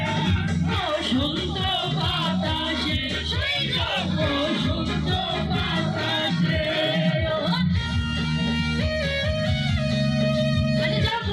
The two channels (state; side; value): identical; both; correlation 1.00